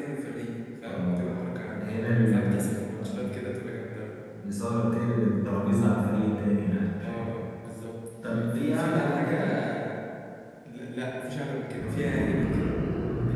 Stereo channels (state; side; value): identical; both; correlation 1.00